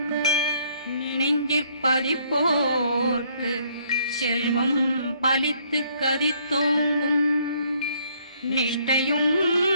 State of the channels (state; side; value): inverted; both; correlation -0.66